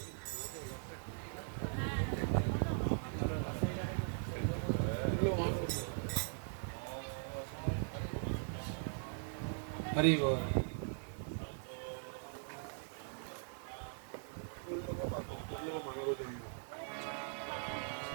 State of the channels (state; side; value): silent; left; digital silence